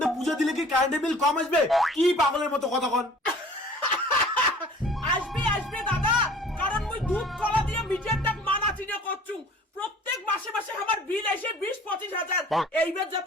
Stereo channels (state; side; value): normal; both; correlation 0.48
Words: পূজা দিলে কি কারেন্টের বিল কম আসবে? কি পাগলের মতো কথা কন। আসবে আসবে দাদা, কারণ মুই দুধ কলা দিয়ে মিটারটা মানা চিনে করছু। প্রত্যেক মাসে মাসে আমার বিল আসে 20-25 হাজার। এইবার